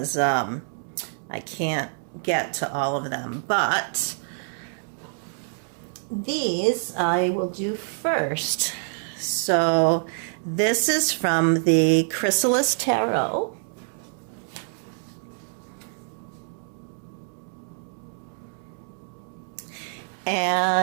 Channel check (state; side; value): silent; left; 61 dB below the other